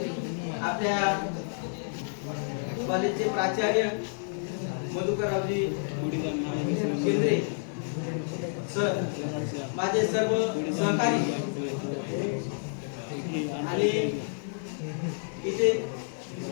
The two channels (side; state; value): right; silent; 58 dB below the other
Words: आपल्या कॉलेजचे प्राचार्य मधुकररावजी केंद्रे सर, माझे सर्व सहकारी आणि इथे